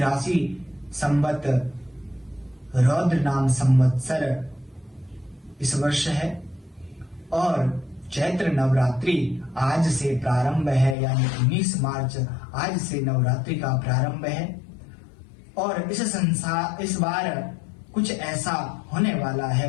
संवत रौद्र नाम संवत्सर इस वर्ष है और चैत्र नवरात्रि आज से प्रारंभ है, यानी 19 मार्च आज से नवरात्रि का प्रारंभ है। और इस बार कुछ ऐसा होने वाला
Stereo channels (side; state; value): right; drops out; at 11.0 s